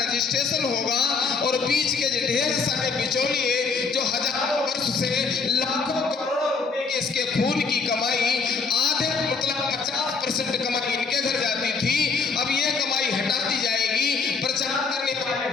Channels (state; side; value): quieter; right; 4.7 dB